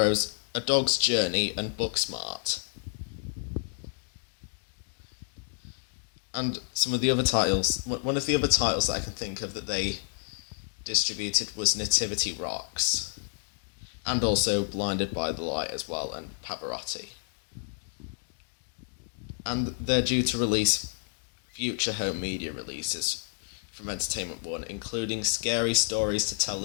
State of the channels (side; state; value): right; silent; digital silence